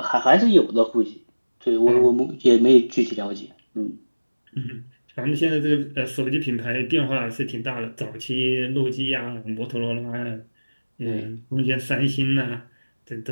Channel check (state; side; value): inverted; both; correlation -1.00